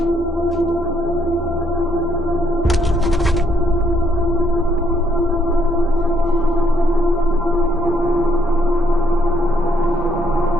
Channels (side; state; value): both; normal; correlation 0.71